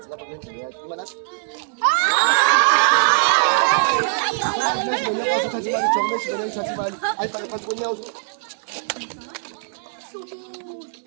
lapha kwendlela yakhe. Imali nathi. Magix man yakwazi thatha imali jo Magix man yakwazi imali. Ayifake phansi konyawo.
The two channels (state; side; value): silent; left; digital silence